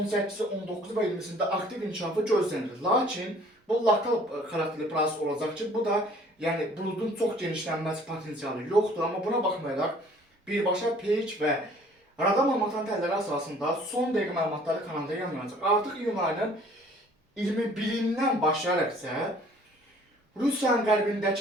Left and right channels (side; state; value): both; normal; correlation 0.55